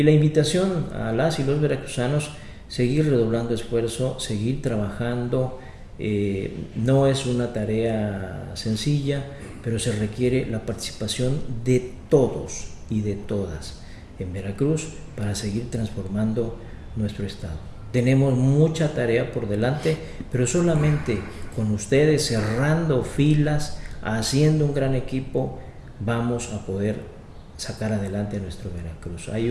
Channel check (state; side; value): identical; both; correlation 1.00